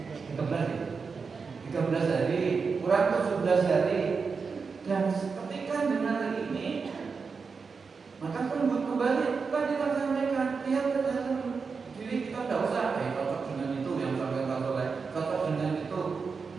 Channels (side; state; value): left; quieter; 5.1 dB